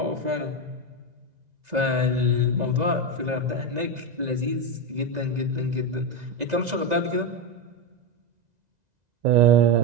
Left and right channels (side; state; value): left; late; 2.0 ms